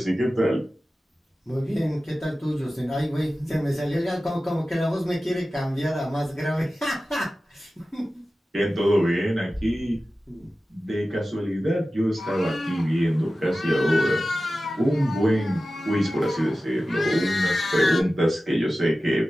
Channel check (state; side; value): normal; both; correlation 0.95